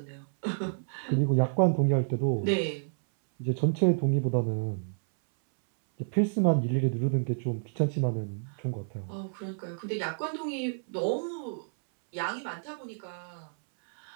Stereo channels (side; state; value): left; silent; 58 dB below the other